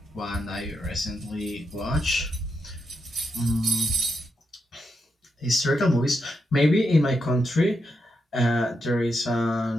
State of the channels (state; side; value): normal; both; correlation 0.84